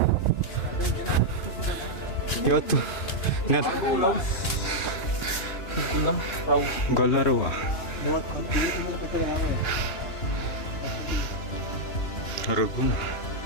ಇವತ್ತು ಗೊಲ್ಲರುವ ರಘುನ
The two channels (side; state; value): right; late; 2.9 ms